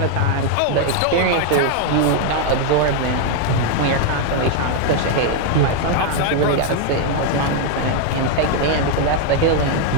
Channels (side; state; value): both; different; correlation 0.00